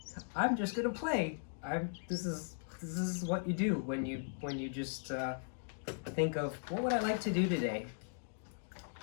I'm just gonna play. This is what you do when you just think of what would I like to do today,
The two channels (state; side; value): silent; right; digital silence